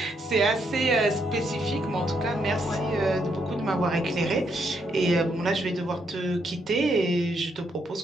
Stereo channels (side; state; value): both; normal; correlation 0.76